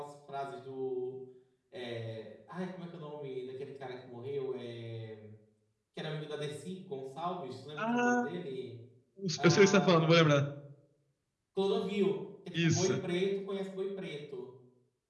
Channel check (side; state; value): both; identical; correlation 1.00